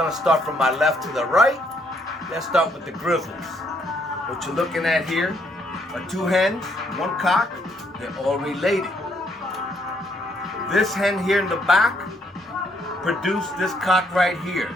start from my left to the right. Let's start with the grizzles. What you're looking at here are two hens, one cock. They're all related. This hen here in the back produced this cock right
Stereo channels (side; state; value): both; normal; correlation 0.70